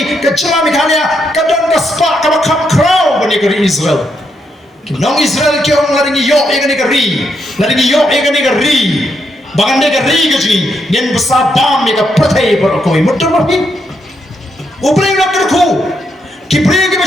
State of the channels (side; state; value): both; normal; correlation 0.79